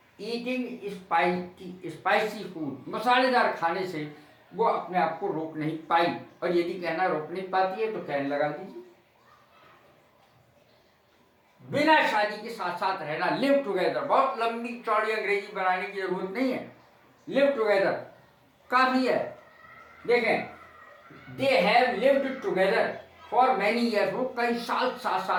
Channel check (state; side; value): identical; both; correlation 1.00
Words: eating spicy food. मसालेदार खाने से वो अपने आप को रोक नहीं पाई। और यदि कहना रोक नहीं पाती है तो कैन लगा दीजिए। बिना शादी के साथ साथ रहना, लिव टुगेदर। बहुत लंबी चौड़ी अंग्रेजी बनाने की जरूरत नहीं है, लिव टुगेदर काफी है। देखें, they have lived together for many years. वो कई साल साथ